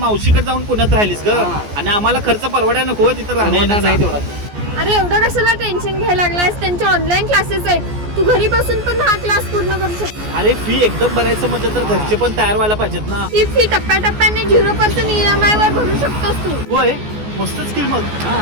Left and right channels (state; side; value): late; left; 14 ms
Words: जाऊन पुण्यात राहिलीस ग, आणि आम्हाला खर्च परवडाय नको तिथं राहणार नाही तेवढा. अरे एवढं कशाला टेन्शन घ्यायला लागलायस? त्यांचे ऑनलाईन क्लासेस आहेत, तू घरी बसून पण हा क्लास पूर्ण करू शकतो. अरे फी एकदम भरायचं म्हणजे तर घरचे पण तयार व्हायला पाहिजेत ना. ही फी टप्प्याटप्प्याने 0% EMI वर भरू शकतोस तू. होय, मस्त स्किल. मग